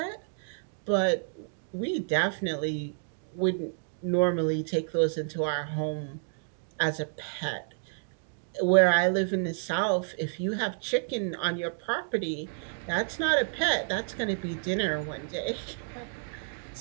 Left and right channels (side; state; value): left; silent; digital silence